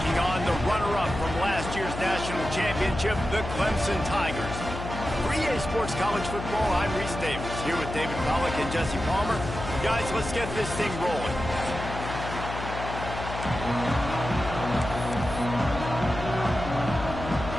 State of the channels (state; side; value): noise; left; hum, 7 dB below the sound